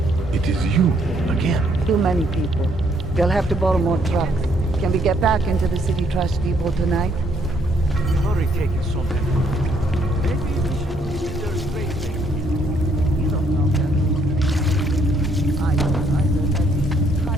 It is you, again. Too many people. We'll have to borrow more trucks. Can we get back into the city trash depot tonight? We've already taken so many. Maybe we should visit their space station. You don't know that. I don't either. That's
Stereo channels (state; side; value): normal; both; correlation 0.69